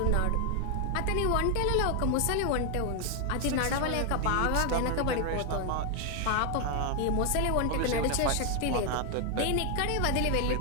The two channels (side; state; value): both; different; correlation 0.00